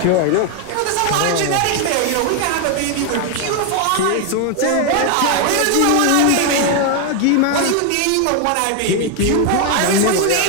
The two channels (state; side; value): different; both; correlation 0.01